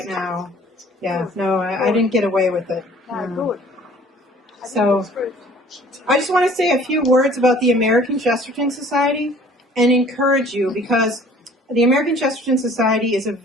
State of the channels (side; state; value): both; normal; correlation 0.52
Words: now. Yeah, no, I didn't get away with it. No, good. So I just want to say a few words about the American Chesterton Society and encourage you, because the American Chesterton Society is a